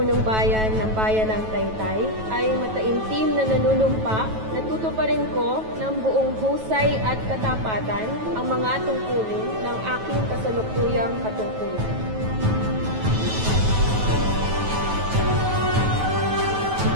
bayan ng bayan ng Taytay ay mataimtim na nanunumpa na tutuparin ko ng buong husay at katapatan ang mga tungkulin ng aking kasalukuyang katungkulan.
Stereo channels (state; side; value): late; left; 9.2 ms